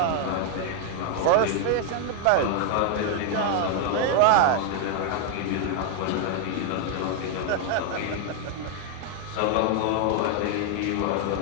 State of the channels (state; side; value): different; both; correlation 0.00